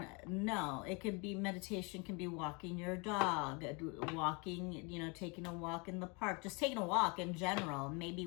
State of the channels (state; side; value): quieter; right; 30.7 dB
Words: No, it could be, meditation can be walking your dog, walking, you know, taking a walk in the park, just taking a walk in general, maybe